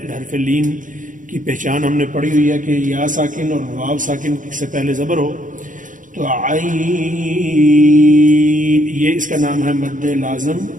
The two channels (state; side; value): late; left; 0.38 ms